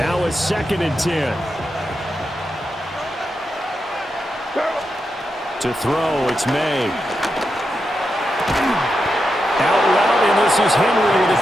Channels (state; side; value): normal; both; correlation 0.87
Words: it's second and 10. To throw, it's May. Out route, and this is Henry with a